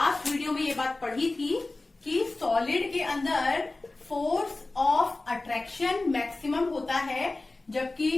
वीडियो में ये बात पढ़ी थी कि सॉलिड के अंदर फोर्स ऑफ अट्रैक्शन मैक्सिमम होता है, जबकि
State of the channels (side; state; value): right; quieter; 3.1 dB